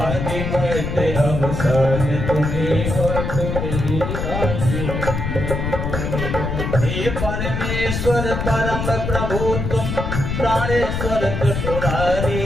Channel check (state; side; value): noise; left; rumble, 3 dB below the sound